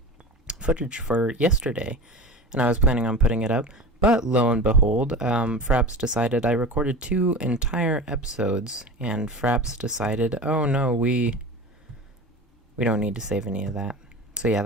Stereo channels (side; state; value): both; normal; correlation 0.32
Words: footage for yesterday. And I was planning on putting it up. But lo and behold, Fraps decided I recorded 2 entire episodes. And Fraps decided, oh no, we don't need to save any of that. So yeah,